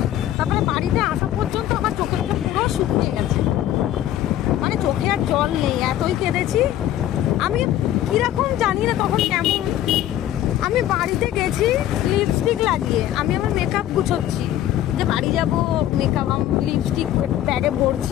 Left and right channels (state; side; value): quieter; right; 12.5 dB